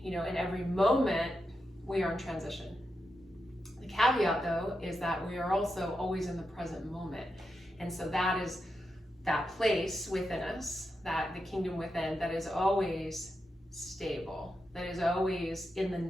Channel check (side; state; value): both; normal; correlation 0.87